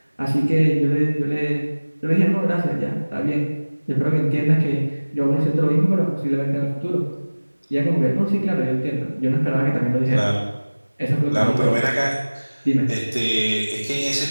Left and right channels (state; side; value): inverted; both; correlation -1.00